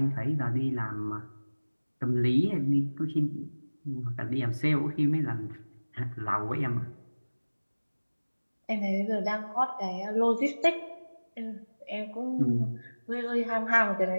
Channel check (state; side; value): inverted; both; correlation -1.00